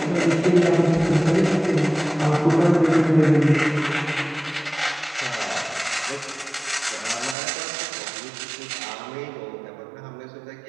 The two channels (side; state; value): left; drops out; at 7.4 s